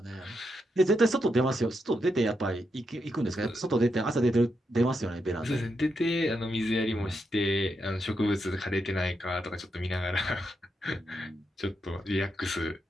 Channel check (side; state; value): both; normal; correlation 0.83